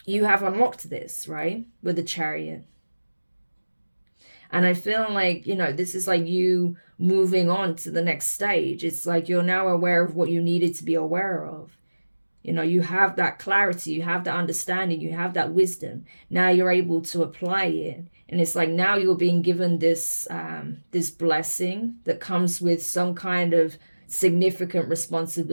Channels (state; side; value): inverted; both; correlation -1.00